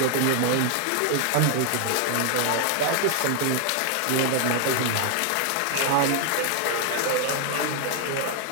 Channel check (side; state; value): both; different; correlation 0.00